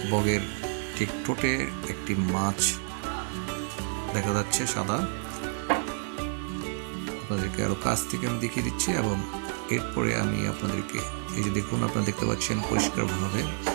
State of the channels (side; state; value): left; silent; digital silence